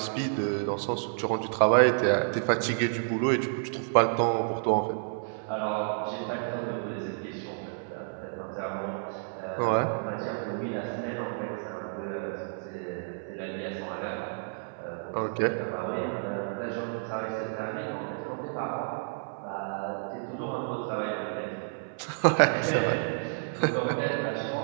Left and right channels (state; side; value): silent; left; 58 dB below the other